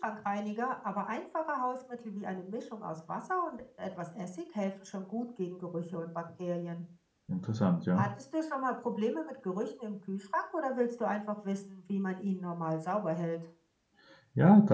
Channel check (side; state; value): both; identical; correlation 1.00